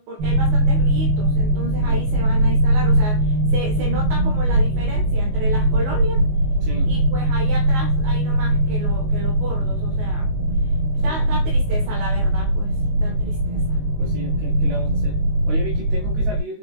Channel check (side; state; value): left; late; 19 ms